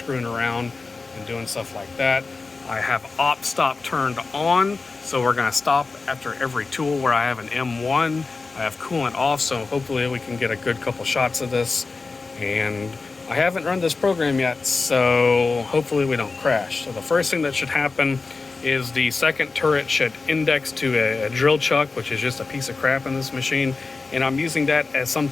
around and doing stuff like that. I have op stop turned on, so we're gonna stop after every tool where I have an M1. I have coolant off, so hopefully we can get a good couple shots of this. And I haven't run this program yet, so hopefully we don't crash. So the first thing that should happen is the second turret should index to a drill chuck, which is just a piece of crap in this machine, and I'm using that as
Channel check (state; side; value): quieter; right; 4.0 dB